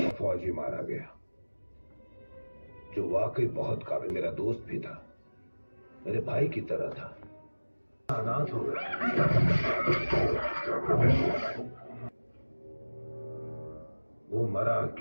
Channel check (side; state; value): both; inverted; correlation -1.00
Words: फौजी मारा गया, जो वाकई बहुत काबिल, मेरा दोस्त भी था, मेरे भाई की तरह था। अनाथ हो गया। वो मरा